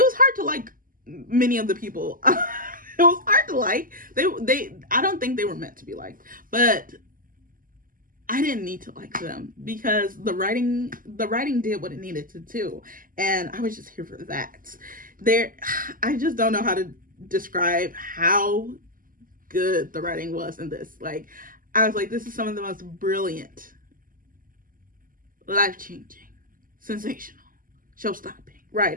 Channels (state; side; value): late; left; 0.41 ms